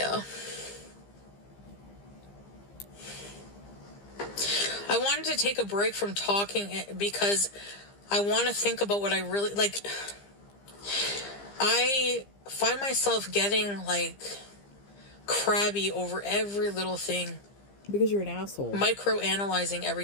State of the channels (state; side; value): late; right; 15 ms